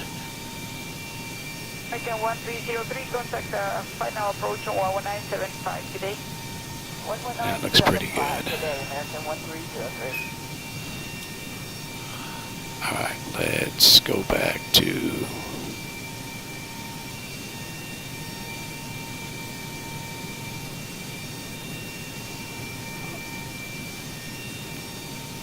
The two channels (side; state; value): both; identical; correlation 1.00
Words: American 1303, contact final approach on 11975 today. That looks pretty good. Today, American 1303. Alright, let's go back to